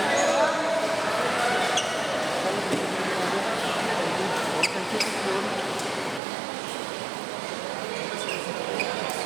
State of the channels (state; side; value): drops out; left; at 6.2 s